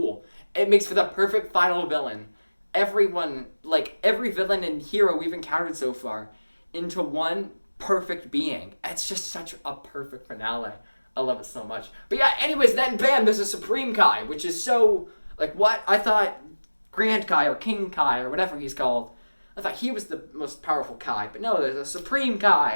It makes for the perfect final villain. Every villain and hero we've encountered so far into one perfect being. It's just such a perfect finale. I love it so much. But yeah, anyways, then bam, there's a Supreme Kai, which is so, like, what? I thought Grand Kai or King Kai or whatever he's called, I thought he was the most powerful Kai. But no, there's a Supreme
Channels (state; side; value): inverted; both; correlation -1.00